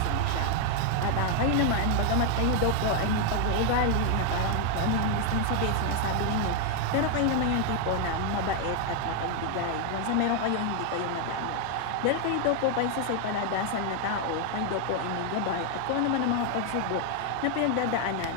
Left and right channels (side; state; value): both; different; correlation 0.01